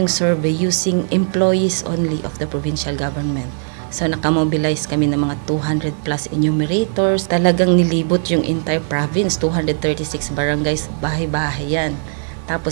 survey using employees only of the provincial government. So nakamobilize kami ng mga 200 plus enumerators. Talagang nilibot yung entire province, 236 barangays, bahay-bahay yan.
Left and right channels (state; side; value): silent; left; digital silence